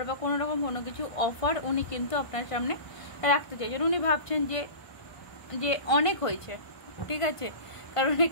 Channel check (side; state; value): right; late; 1.5 ms